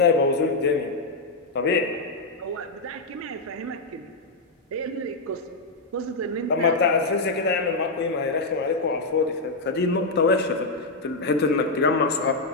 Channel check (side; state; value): right; quieter; 3.3 dB